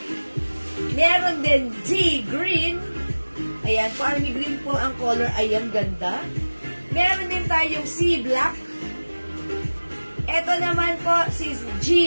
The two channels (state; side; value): inverted; both; correlation -1.00